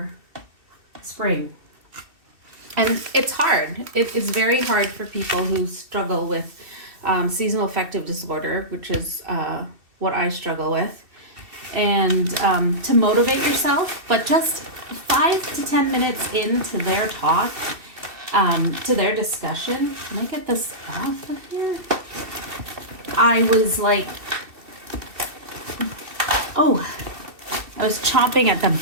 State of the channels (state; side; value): late; left; 2.7 ms